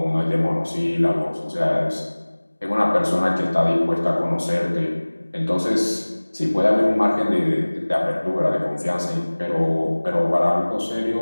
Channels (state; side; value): inverted; both; correlation -1.00